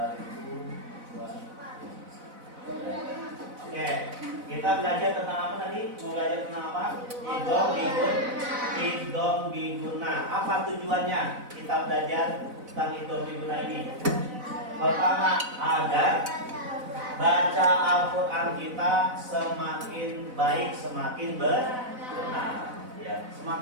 Oke, kita belajar tentang apa tadi? Mau belajar tentang apa? Idgham biguna. Apa tujuannya kita belajar tentang idgham biguna ini? Pertama, agar baca Al-Quran kita semakin baik, semakin benar. Ya,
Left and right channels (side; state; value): left; late; 4.0 ms